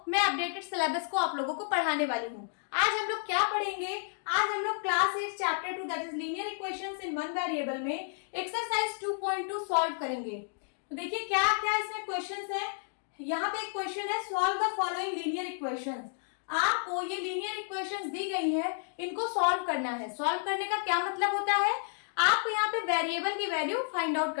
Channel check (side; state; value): right; silent; digital silence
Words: मैं अपडेटेड सिलेबस को आप लोगों को पढ़ाने वाली हूँ। आज हम लोग क्या पढ़ेंगे, आज हम लोग class 8 chapter 2 that is linear equations in one variable में एक्सरसाइज 2.2 सॉल्व करेंगे। तो देखिए क्या क्या इसमें क्वेश्चंस है। यहाँ पे एक क्वेश्चन है, solve the following linear equations. आपको ये लीनियर इक्वेशंस दी गई है, इनको सॉल्व करना है। सॉल्व करने का क्या मतलब होता है, आपको यहाँ पे वेरिएबल की वैल्यू फाइंड आउट